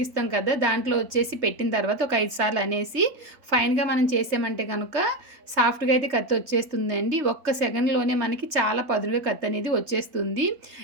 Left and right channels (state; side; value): late; left; 3.3 ms